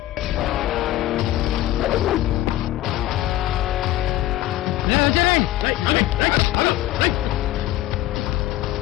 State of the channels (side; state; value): right; quieter; 14.8 dB